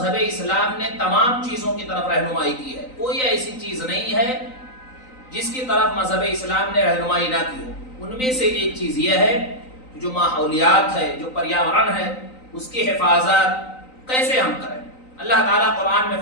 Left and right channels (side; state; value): right; late; 3.9 ms